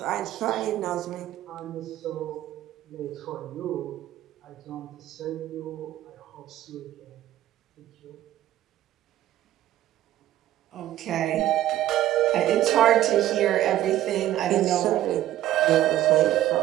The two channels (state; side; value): quieter; left; 13.4 dB